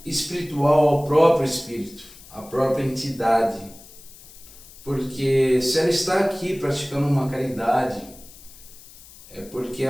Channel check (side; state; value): left; noise; hiss, 20 dB below the sound